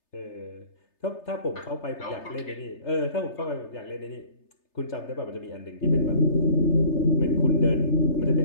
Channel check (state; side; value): late; right; 3.3 ms